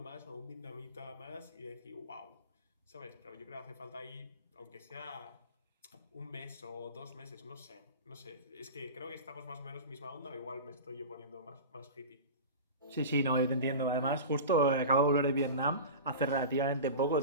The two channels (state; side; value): inverted; both; correlation -0.30